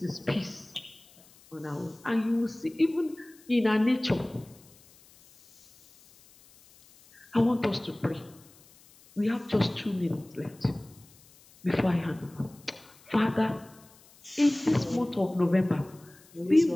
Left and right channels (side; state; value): left; noise; hiss, 26 dB below the sound